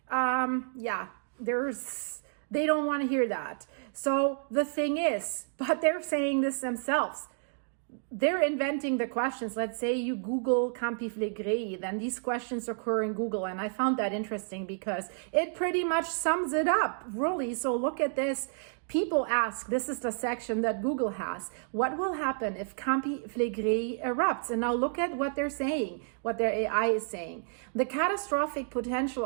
they don't want to hear that. So the thing is, but they're saying this themselves. They're inventing the questions. Let's say you Google Campi Flegrei, then these questions occur in Google. And I found that interesting because it pretty much sums it up, really. So look at this. People ask, this is the section that Google has, what will happen if Campi Flegrei erupts? And now look at what they're saying, what their AI is saying. The catastrophic potential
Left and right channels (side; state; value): left; silent; digital silence